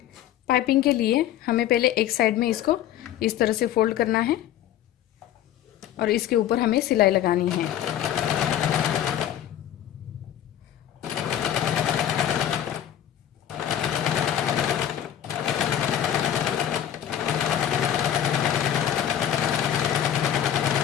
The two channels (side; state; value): right; quieter; 10.9 dB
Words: पाइपिंग के लिए हमें पहले एक साइड में इसको इस तरह से फोल्ड करना है और इसके ऊपर हमें सिलाई लगानी है।